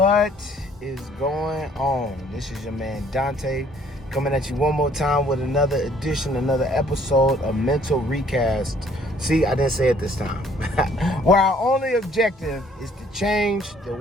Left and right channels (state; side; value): normal; both; correlation 0.60